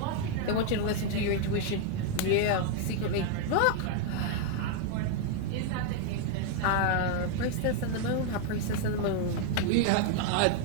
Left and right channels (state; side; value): different; both; correlation 0.00